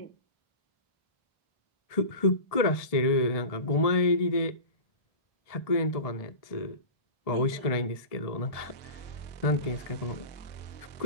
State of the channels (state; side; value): late; right; 1.7 ms